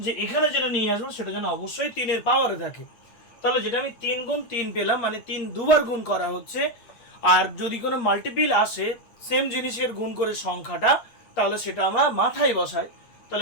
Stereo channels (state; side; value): late; right; 8.7 ms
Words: এখানে যেটা নিয়ে আসবো সেটা যেন অবশ্যই 3-এর পাওয়ারে থাকে। তাহলে যেটা আমি 3 গুণ 3 পেলাম, মানে 3 দুবার গুণ করা হচ্ছে। আর যদি কোনো মাল্টিপিল আসে সেম জিনিসের গুণ করে সংখ্যাটা, তাহলে সেটা আমরা মাথায় বসাই।